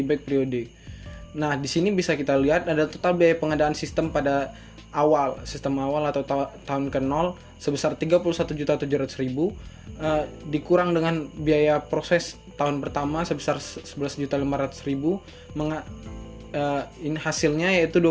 periode. Nah, di sini bisa kita lihat ada total biaya pengadaan sistem pada sistem awal atau tahun ke 0 sebesar 31.700.000, dikurang dengan biaya proses tahun pertama sebesar 11.500.000, ini hasilnya yaitu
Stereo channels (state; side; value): identical; both; correlation 1.00